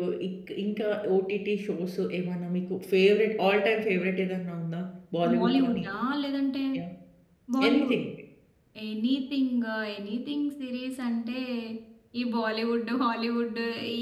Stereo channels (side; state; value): both; identical; correlation 1.00